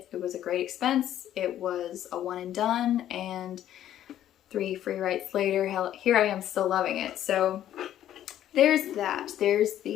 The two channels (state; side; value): quieter; right; 11.7 dB